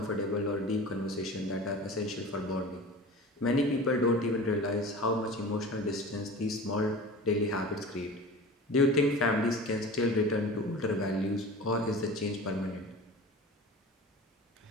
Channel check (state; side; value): normal; both; correlation 0.36